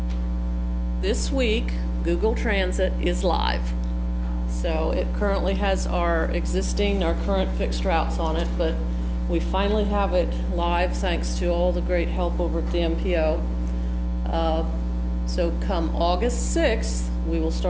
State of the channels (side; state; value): both; identical; correlation 1.00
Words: this week, Google Transit is live. So it currently has our current fixed routes on it, but we finally have it live thanks to all the great help over at the MPO. So come August 6th, we will